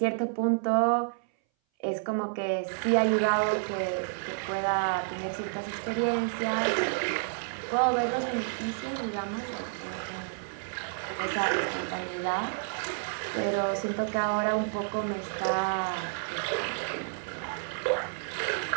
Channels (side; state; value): left; silent; 58 dB below the other